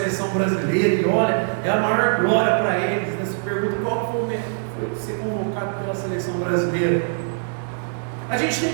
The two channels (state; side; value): silent; left; digital silence